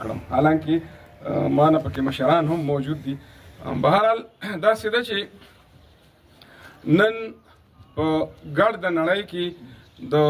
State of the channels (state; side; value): identical; both; correlation 1.00